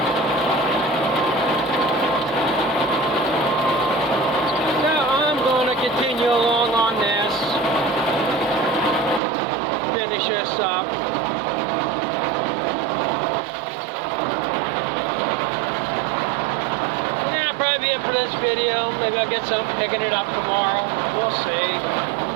So I'm going to continue along on this. Finish this up. For this video, maybe I'll get some picking it up tomorrow. We'll see.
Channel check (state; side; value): drops out; left; at 9.2 s